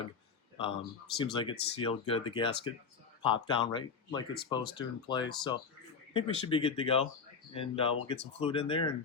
Seems like it's sealed good. The gasket popped down right like it's supposed to in place. So I think we should be good to go. And we'll get some fluid in there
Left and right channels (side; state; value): right; quieter; 5.6 dB